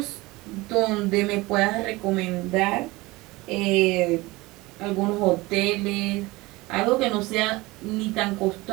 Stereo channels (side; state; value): left; quieter; 21.4 dB